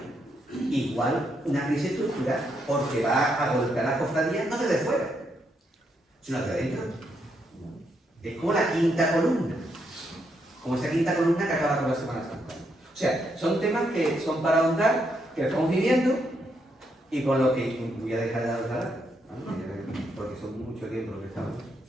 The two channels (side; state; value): both; normal; correlation 0.78